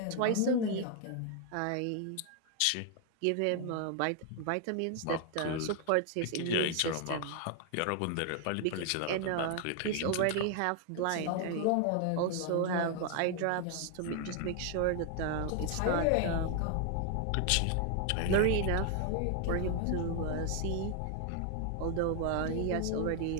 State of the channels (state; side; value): different; both; correlation 0.00